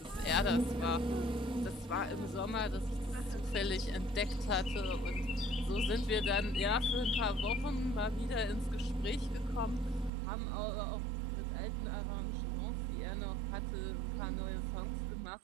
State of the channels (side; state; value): left; drops out; at 10.1 s